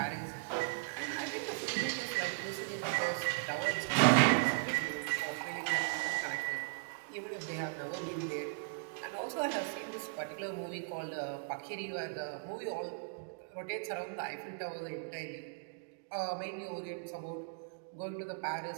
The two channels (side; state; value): left; silent; digital silence